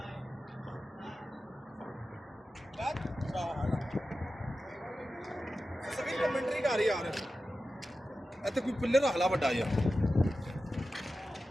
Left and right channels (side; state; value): both; normal; correlation 0.93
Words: कमेंट्री कर यार इत्थे कोई पिलर रख ला बड़ा यार